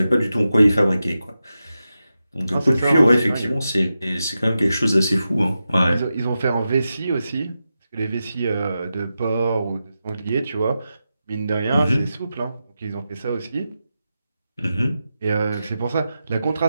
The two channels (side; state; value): both; inverted; correlation -0.90